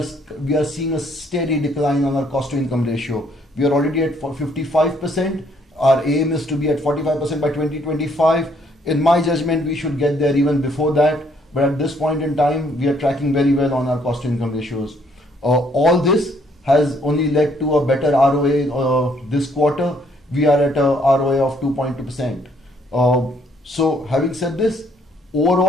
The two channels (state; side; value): normal; both; correlation 0.67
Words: seeing a steady decline on our cost to income ratio. We are already at 55%. Our aim is to be at 45% by 2025. In my judgment, we should get there even before that. But at this point in time, we are tracking very well on our cost to income ratios. All this has only led to a better ROA this quarter. We are at a ROA of 2.2%. So having said this,